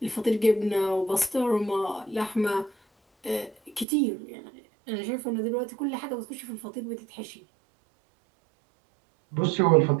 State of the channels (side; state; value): left; drops out; at 3.9 s